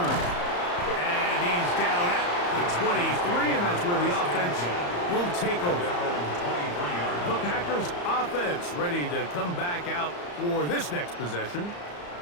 And he's down at the 23, and that's where the offense will take over. The Packers offense ready to come back out for this next possession.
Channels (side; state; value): right; late; 34 ms